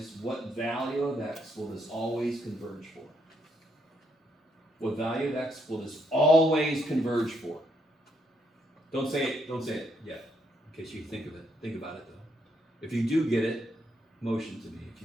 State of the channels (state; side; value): normal; both; correlation 0.75